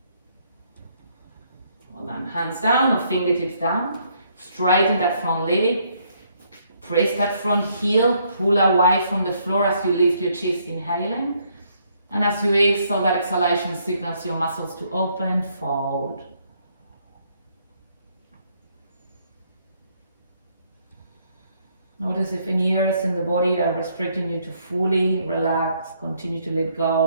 Well then, hands down or fingertips down. Straighten that front leg. Press that front heel. Pull away from the floor as you lift your chest, inhaling. And as you exhale, that exhalation signals your muscles to open, fold. Notice if any areas in the body are restricting you to fully relax, continue to let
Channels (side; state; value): both; inverted; correlation -0.70